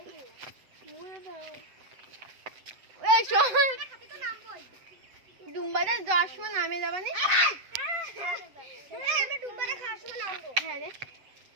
ডুম্বাতে যাওয়ার সময় নামে যাবা নি? আমি ডুম্বারে খাওয়ার সময় নামবো। হ্যাঁ রে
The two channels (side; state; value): left; late; 8.0 ms